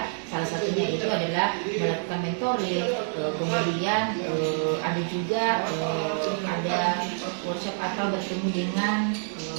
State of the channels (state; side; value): silent; left; digital silence